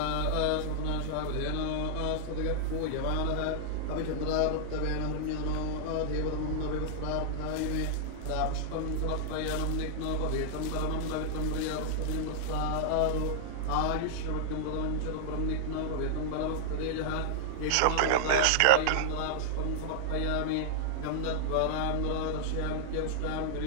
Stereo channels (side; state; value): both; different; correlation -0.01